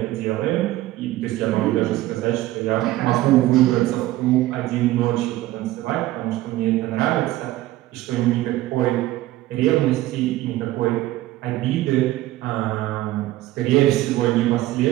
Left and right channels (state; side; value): quieter; left; 16.2 dB